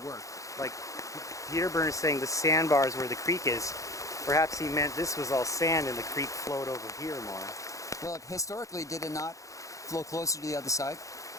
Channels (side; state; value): right; late; 0.16 ms